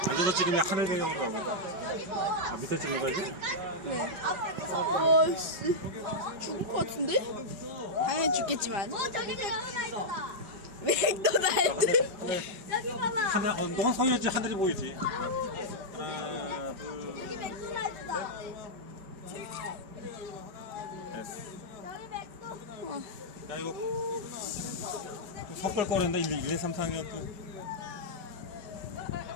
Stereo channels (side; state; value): left; late; 5.2 ms